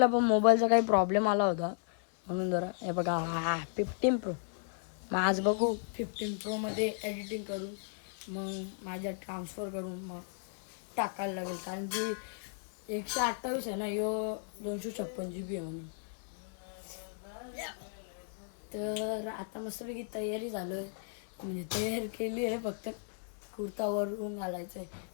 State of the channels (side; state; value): right; silent; 55 dB below the other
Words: पण मोबाईलचा काही प्रॉब्लेम आला होता, म्हणून जरा हे बघा 15 प्रो. मग आज बघू 15 प्रोमध्ये एडिटिंग करून मग माझ्या ट्रान्सफर करून मग टाकायला लागेल, कारण की 128 आहे ना, यो 256 GB आहे म्हणून. तर आता मस्तपैकी तयारी झालो आहे, म्हणजे तयारी केली आहे, फक्त कुर्तावरून घालायचं आहे.